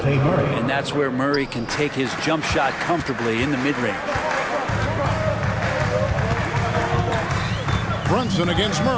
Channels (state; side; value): identical; both; correlation 1.00